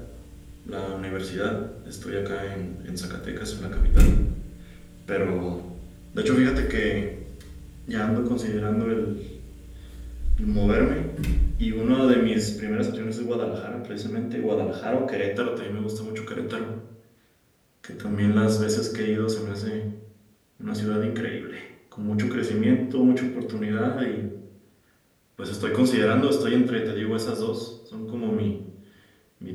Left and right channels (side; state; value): both; identical; correlation 1.00